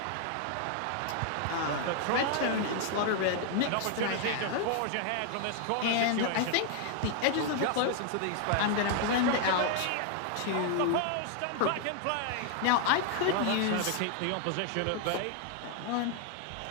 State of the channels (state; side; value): different; both; correlation 0.00